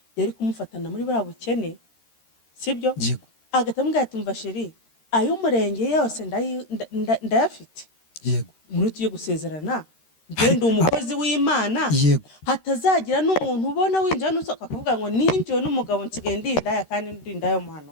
yari kumufatana muri buriya bukene sibyo agahita amubwira ati mva sheri ay'umurenge yose ndayafite muri tugiye gusezerana ngende umukozi w'Imana hatazagira n'umuntu ubona winjira n'usohoka akavuga ngo ninjiwe n'umugabo nsigaye ndindaya kandi ndindaya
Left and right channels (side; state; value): right; late; 13 ms